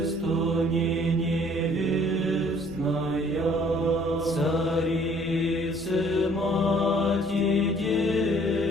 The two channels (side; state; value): right; noise; hum, 21 dB below the sound